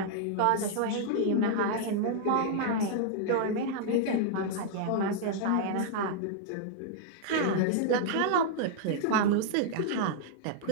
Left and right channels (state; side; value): different; both; correlation -0.01